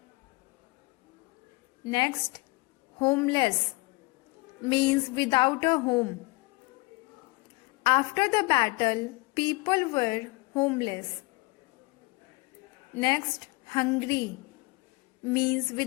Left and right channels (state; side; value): quieter; right; 25.2 dB